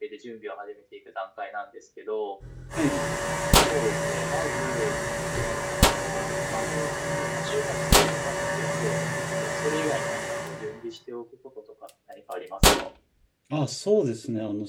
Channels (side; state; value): both; identical; correlation 1.00